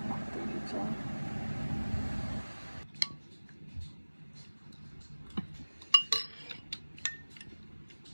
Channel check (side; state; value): both; inverted; correlation -1.00